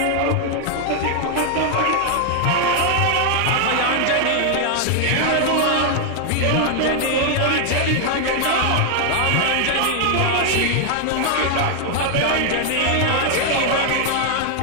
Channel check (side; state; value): both; different; correlation 0.00